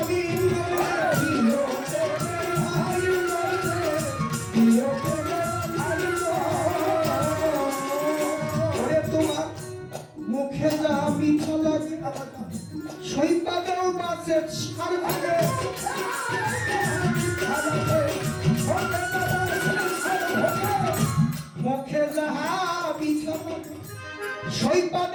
তোমার মুখে যা মিঠা লাগে সৈপাদেও মাছের সার ভাগে মুখে যাহা মিঠা লাগে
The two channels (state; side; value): identical; both; correlation 1.00